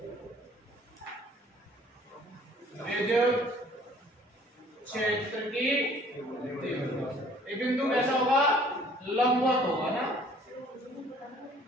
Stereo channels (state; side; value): normal; both; correlation 0.55